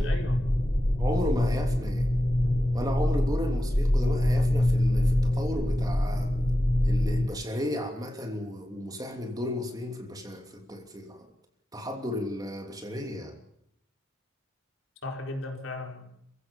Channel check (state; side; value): normal; both; correlation 0.92